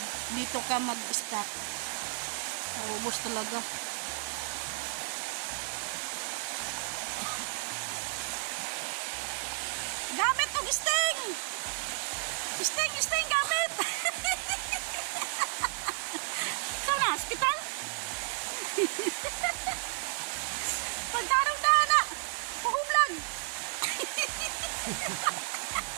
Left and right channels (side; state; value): left; silent; digital silence